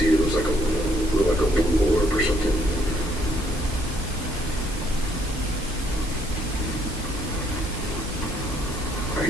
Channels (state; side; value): normal; both; correlation 0.69